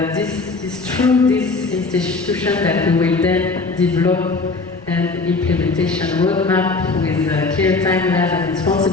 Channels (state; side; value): quieter; right; 3.8 dB